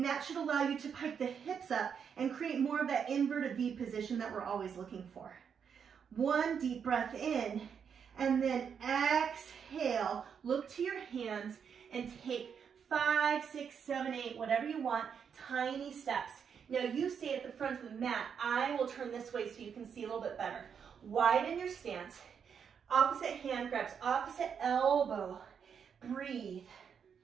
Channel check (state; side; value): quieter; left; 7.2 dB